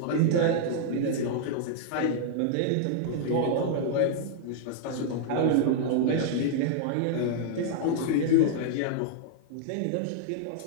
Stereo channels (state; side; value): different; both; correlation -0.01